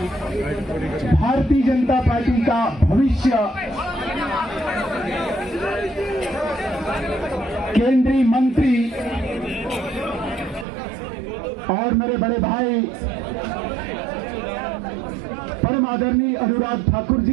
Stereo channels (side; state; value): left; drops out; at 10.7 s